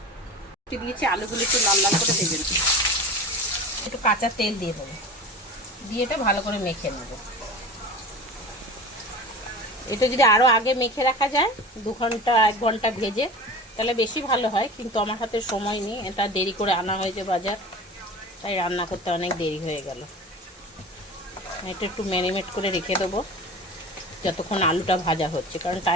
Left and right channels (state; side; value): normal; both; correlation 0.34